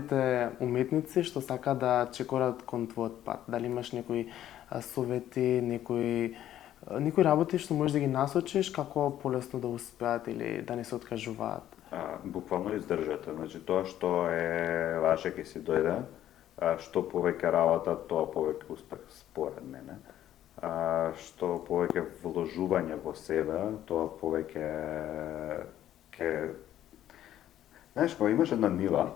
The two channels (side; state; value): right; quieter; 12.0 dB